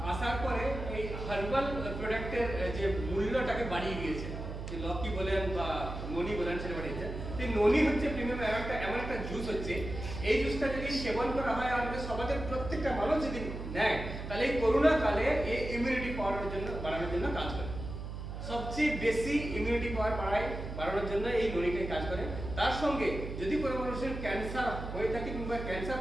আসার পরে এই হার্বাল প্রোডাক্টের যে মূল্যটাকে বাড়িয়ে দিয়েছে, যে লকি বলেন বা ননি বলেন সেটা বাড়িয়েছে। তো ননি হচ্ছে প্রিমিয়াম এমন একটা জুস হচ্ছে, এই জুসটা যদি সেবন করা হয় আমাদের সমাজের প্রত্যেকটা মানুষ যদি নেয়, তাহলে এই করোনা কালে এই ইমিউনিটি পাওয়ার জন্য বাড়ানোর জন্য কাজ করে। সবচেয়ে বেশি ইমিউনিটি পাওয়ার বাড়ানোর জন্য এই ননিটাই কাজ করে। তার সঙ্গে যদি কোনো মানুষের ক্যান্সার হয়ে থাকে কিংবা ক্যান্সার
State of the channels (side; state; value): right; noise; hum, 7 dB below the sound